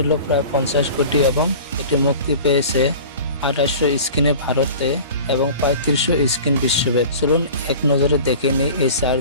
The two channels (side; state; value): both; inverted; correlation -0.40